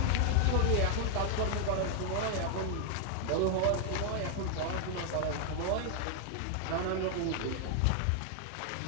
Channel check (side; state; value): both; different; correlation 0.00